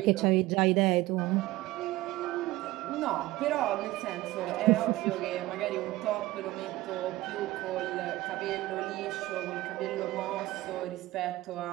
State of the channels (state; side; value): quieter; left; 17.9 dB